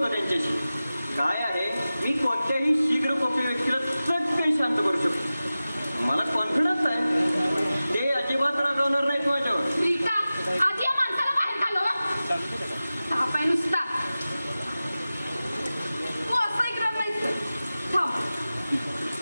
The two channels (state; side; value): inverted; both; correlation -0.96